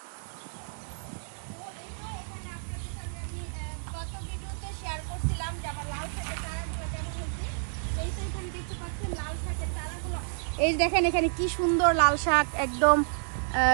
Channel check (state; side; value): silent; left; digital silence